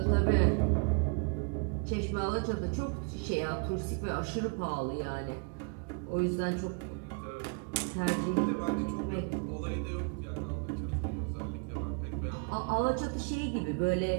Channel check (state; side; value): quieter; left; 36.5 dB